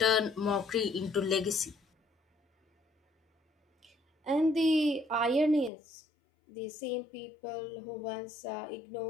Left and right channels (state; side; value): drops out; right; at 5.7 s